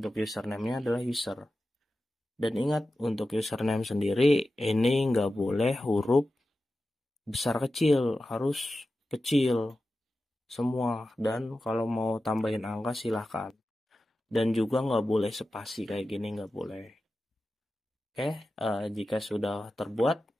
username-nya adalah user. Dan ingat untuk username sendiri ini nggak boleh huruf besar kecil, harus kecil semua. Dan kalau mau tambahin angka silahkan. Dan juga nggak boleh spasi kayak gini, nggak boleh. Oke, jika sudah terbuat,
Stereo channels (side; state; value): both; normal; correlation 0.93